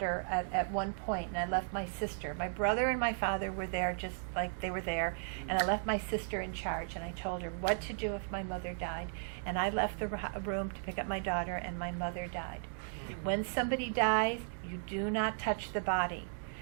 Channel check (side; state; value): left; silent; digital silence